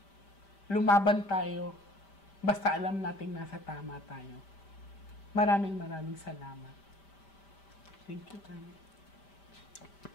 Lumaban tayo, basta alam nating nasa tama tayo. Maraming salamat. Thank you, Tani.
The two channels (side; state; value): right; late; 5.1 ms